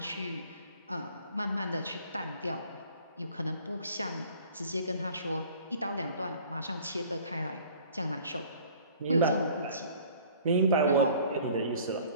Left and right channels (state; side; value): inverted; both; correlation -0.51